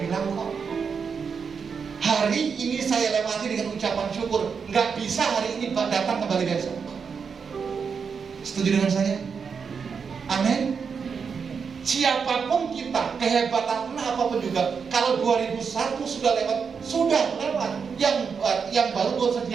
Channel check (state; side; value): quieter; left; 6.0 dB